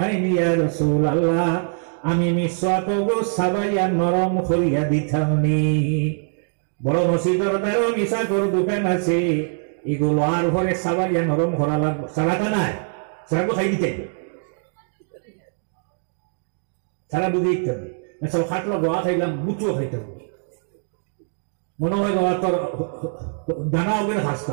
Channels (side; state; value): left; silent; digital silence